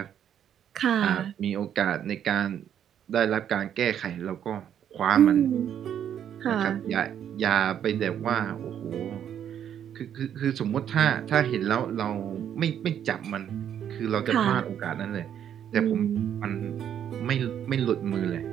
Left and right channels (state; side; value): quieter; left; 9.5 dB